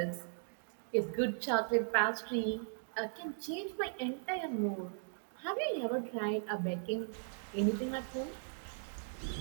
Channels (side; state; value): left; silent; digital silence